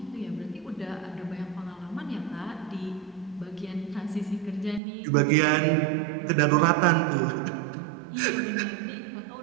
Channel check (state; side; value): drops out; left; at 4.8 s